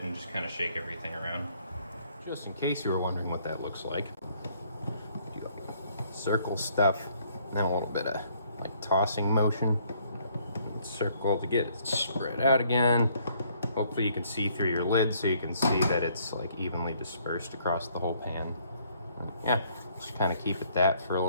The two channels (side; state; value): both; inverted; correlation -0.65